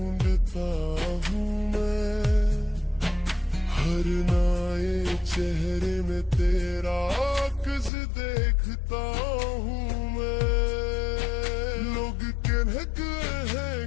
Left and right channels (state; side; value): drops out; right; at 7.9 s